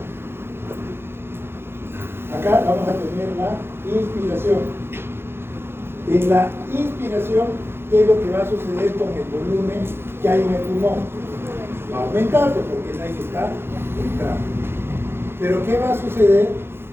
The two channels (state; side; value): late; left; 0.11 ms